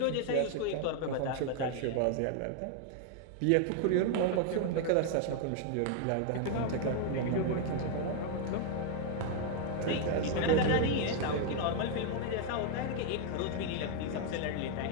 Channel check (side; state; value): both; different; correlation 0.00